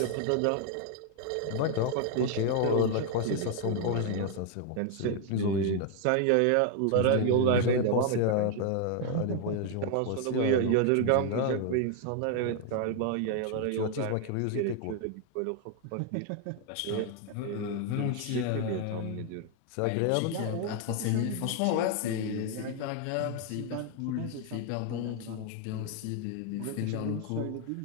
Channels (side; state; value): both; different; correlation 0.00